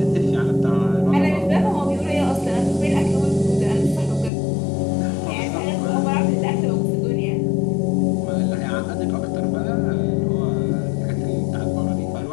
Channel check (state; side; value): drops out; right; at 4.3 s